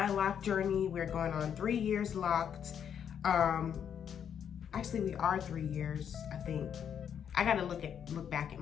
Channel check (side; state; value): right; quieter; 8.4 dB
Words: lock journey. We're going on 3 years locked. Actually, we are 3 years, I think. I gotta look back at